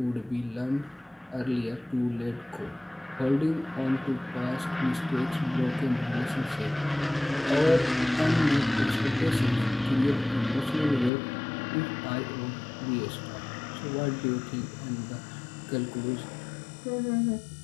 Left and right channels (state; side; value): drops out; right; at 11.1 s